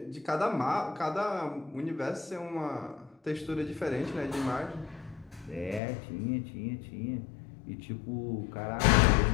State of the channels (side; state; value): right; drops out; at 5.8 s